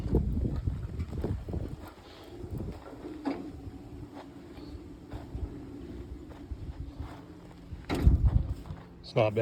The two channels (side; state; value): both; identical; correlation 1.00